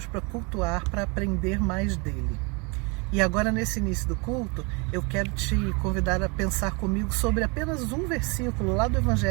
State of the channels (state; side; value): quieter; left; 30.8 dB